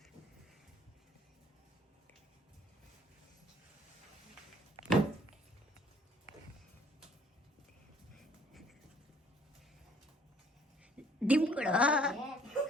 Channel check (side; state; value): both; normal; correlation 0.58